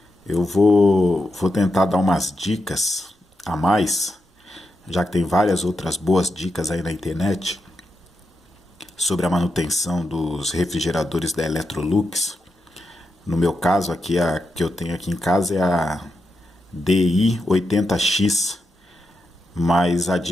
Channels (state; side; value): normal; both; correlation 0.86